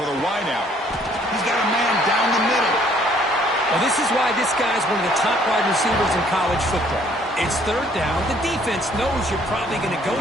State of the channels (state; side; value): normal; both; correlation 0.61